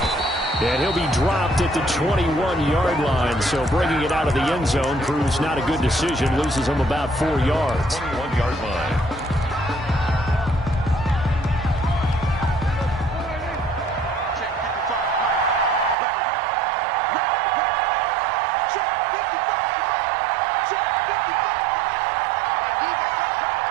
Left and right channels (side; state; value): left; drops out; at 16.0 s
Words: And he'll be dropped at the 21-yard line. So bringing it out of the end zone proves not a good decision. Loses him about 4 yards. 21-yard line.